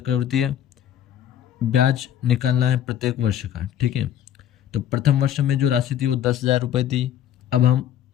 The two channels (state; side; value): quieter; right; 10.7 dB